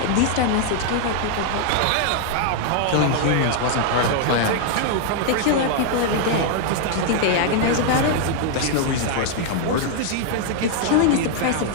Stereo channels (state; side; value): different; both; correlation 0.00